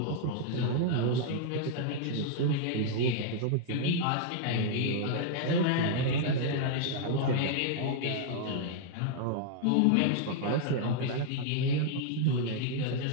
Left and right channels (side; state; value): both; different; correlation 0.00